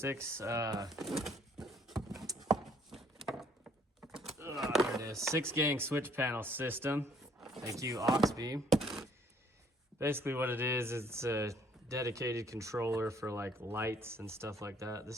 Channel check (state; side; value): normal; both; correlation 0.62